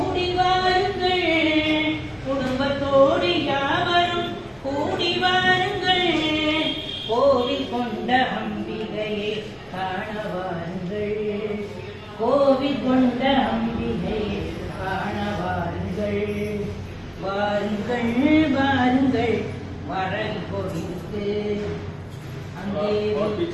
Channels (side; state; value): both; identical; correlation 1.00